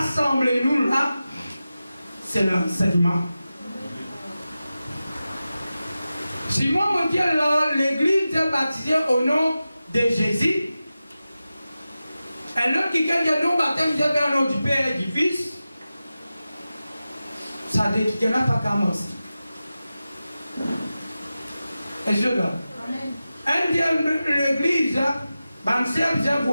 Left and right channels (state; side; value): inverted; both; correlation -0.94